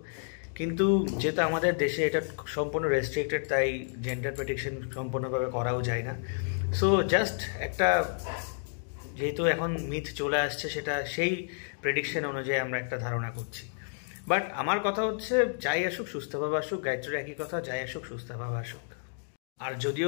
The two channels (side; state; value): right; silent; digital silence